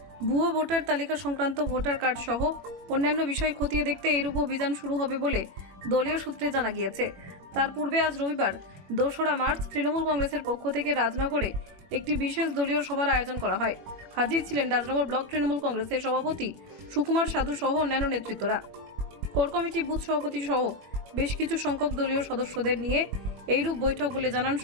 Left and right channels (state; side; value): late; left; 21 ms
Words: ভুয়ো ভোটার তালিকা সংক্রান্ত ভোটার কার্ড সহ অন্যান্য বিষয় খতিয়ে দেখতে এইরূপ অভিযান শুরু হবে বলে দলীয় সূত্রে জানা গিয়েছে। তার পূর্বে আজ রবিবার 2রা মার্চ তৃণমূল কংগ্রেসের পক্ষ থেকে রাজনগরে একটি বিশেষ দলীয় সভার আয়োজন করা হয়। হাজির ছিলেন রাজনগর ব্লক তৃণমূল কংগ্রেসের সভাপতি সুকুমার সাধু সহ অন্যান্য নেতৃত্বরা। কোর কমিটি, বুথ সভাপতি সহ বেশ কিছু সংখ্যক দলীয় সদস্যদের নিয়ে এইরূপ বৈঠক বলে জানান